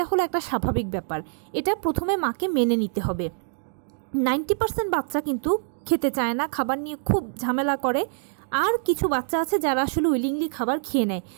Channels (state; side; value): silent; left; digital silence